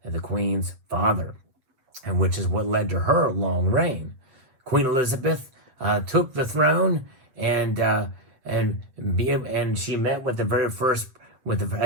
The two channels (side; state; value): left; late; 7.9 ms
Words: the Queen's father, and which is what led to her long reign. Queen Elizabeth took the throne, and she met with the very first,